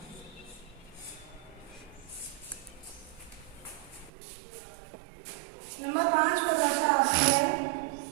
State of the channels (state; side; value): drops out; left; at 4.1 s